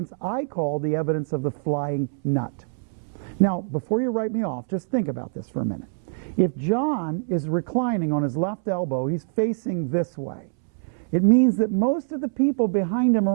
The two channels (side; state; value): left; silent; 62 dB below the other